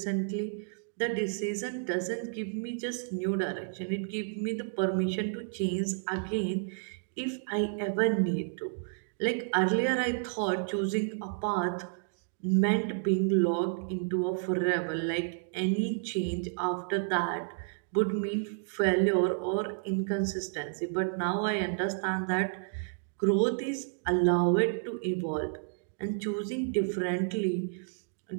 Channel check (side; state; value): left; silent; digital silence